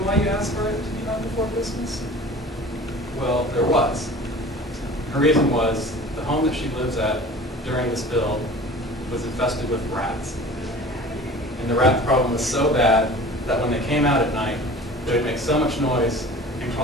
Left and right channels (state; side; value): normal; both; correlation 0.42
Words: why you asked for it to be done before Christmas? Well, there was. Her reason was the home that she lives at during the spill was infested with rats. And the rat problem was so bad that when they came out at night, they would make so much noise and